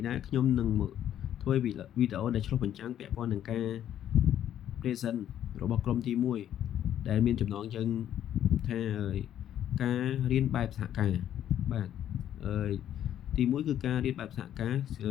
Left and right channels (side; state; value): right; quieter; 10.8 dB